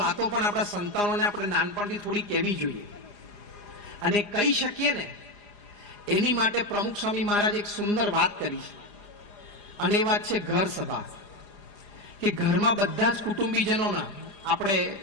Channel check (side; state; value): right; late; 4.9 ms